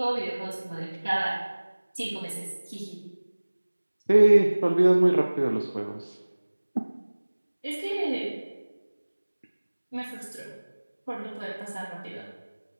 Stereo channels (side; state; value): both; inverted; correlation -1.00